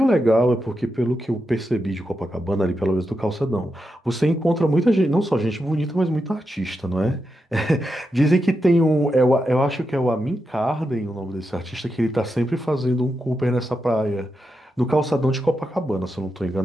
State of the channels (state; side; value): normal; both; correlation 0.87